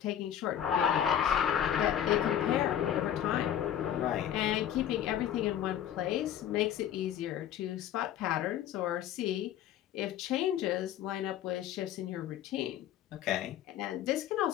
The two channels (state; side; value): quieter; right; 10.4 dB